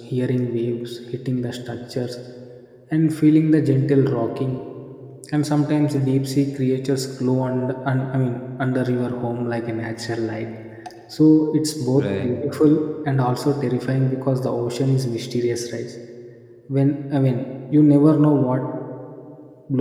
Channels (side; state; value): both; identical; correlation 1.00